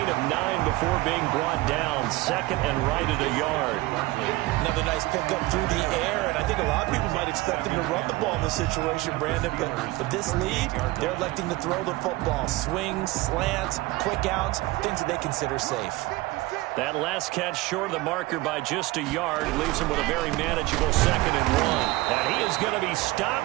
of 9 before being brought down. Second and right at a yard. Another nice pickup through the air, and I think a lot of people might expect him to run the ball in this situation, Brandon, but with this lead, they're electing to throw the football. Swings, slants, quick outs, things that they consider safe. That last catch short of the marker by just a yard leaves him with a very manageable 2nd and 1. And he is going to be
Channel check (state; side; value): quieter; left; 20.0 dB